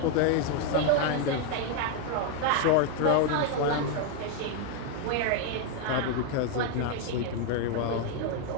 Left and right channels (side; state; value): both; different; correlation 0.01